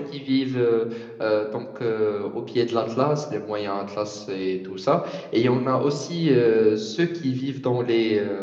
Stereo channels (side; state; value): both; identical; correlation 1.00